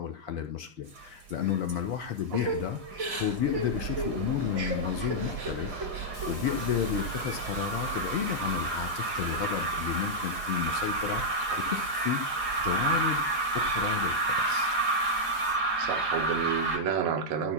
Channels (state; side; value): late; left; 4.9 ms